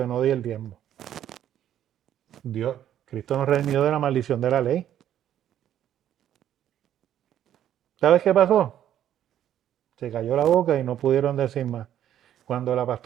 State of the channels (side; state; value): left; quieter; 11.0 dB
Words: no di el diezmo? Dios, Cristo nos redimió de la maldición de la ley. ¿Sabes qué pasó? Se cayó la boca y no pudieron decir más. Cuando la